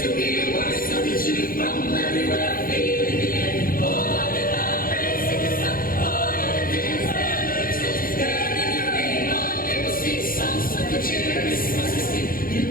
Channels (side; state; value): right; late; 0.42 ms